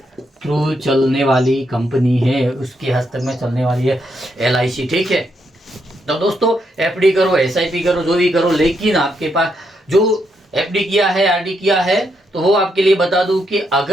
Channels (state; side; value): normal; both; correlation 0.79